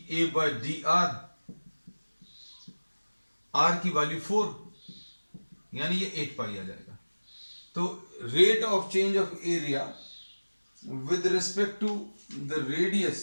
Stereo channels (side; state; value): both; inverted; correlation -1.00